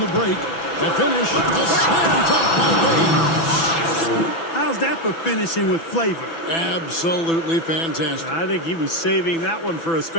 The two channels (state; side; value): late; right; 6.0 ms